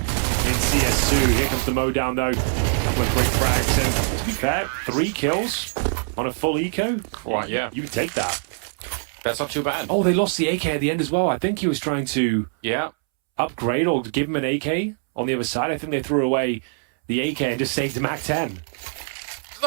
CS2. Here comes the Modown, though, with quick frags, and to be fair, 3 kills on a full eco. Right, yeah. You would take that. That's not too bad. Oh, they lost the AK at the end as well. I think he was trying to upgrade or give him an AK on the other side. I think they threw away the AK and just saved the MAC-10.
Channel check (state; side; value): silent; left; 63 dB below the other